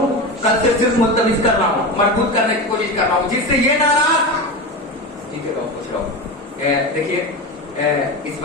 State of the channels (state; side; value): normal; both; correlation 0.23